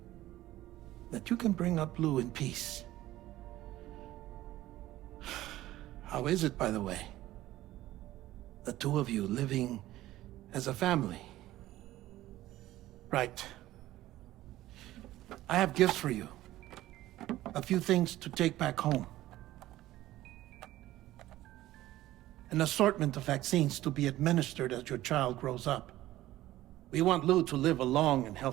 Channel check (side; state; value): left; quieter; 15.3 dB